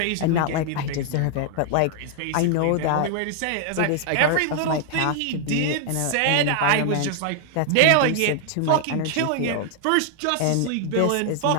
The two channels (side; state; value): both; different; correlation 0.00